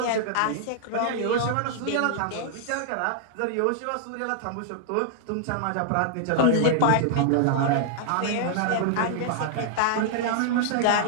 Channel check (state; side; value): different; both; correlation -0.01